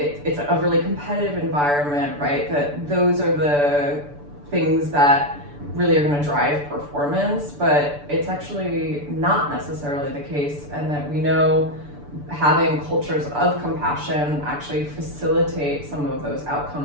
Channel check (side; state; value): left; late; 6.9 ms